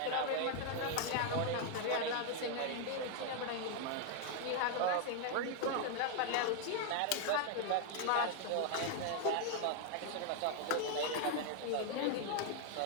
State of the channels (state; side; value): different; both; correlation 0.00